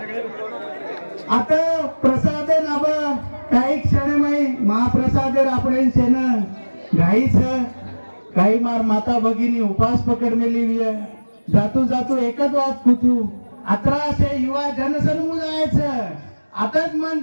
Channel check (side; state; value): both; inverted; correlation -1.00